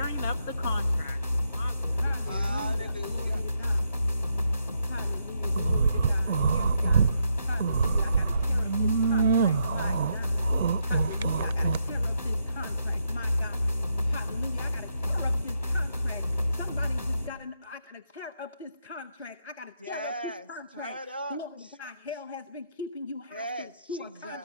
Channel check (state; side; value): inverted; both; correlation -0.79